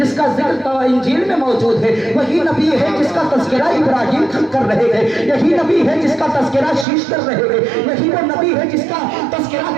کا ذکر انجیل میں موجود ہے، وہی نبی ہے جس کا تذکرہ ابراہیم کر رہے ہیں، یہی نبی ہے جس کا تذکرہ شیش کر رہے ہیں، یہی وہ نبی ہے جس کا تذکرہ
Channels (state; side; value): drops out; left; at 6.9 s